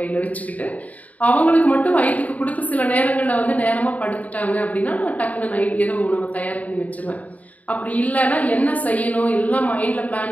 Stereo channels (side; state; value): right; late; 0.072 ms